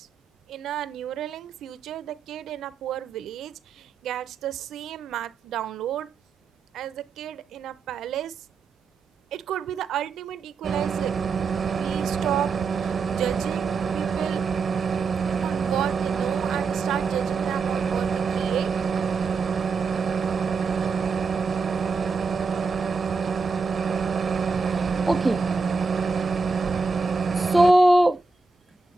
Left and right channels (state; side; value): quieter; left; 4.4 dB